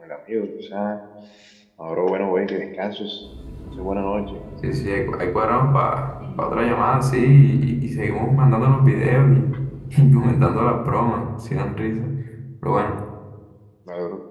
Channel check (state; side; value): identical; both; correlation 1.00